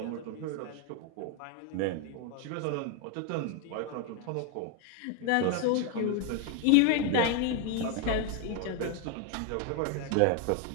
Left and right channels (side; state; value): both; different; correlation 0.01